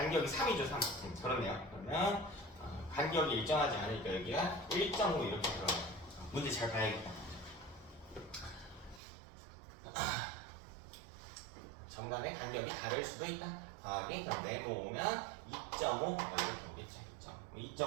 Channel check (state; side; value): drops out; left; at 9.0 s